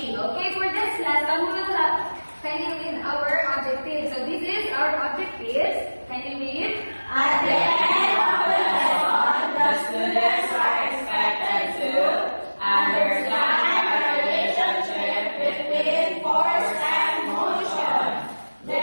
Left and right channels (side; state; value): both; inverted; correlation -1.00